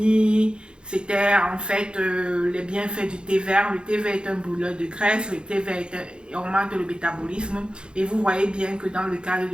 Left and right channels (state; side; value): late; left; 0.052 ms